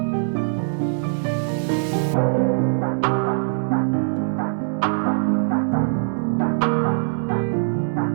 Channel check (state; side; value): silent; left; digital silence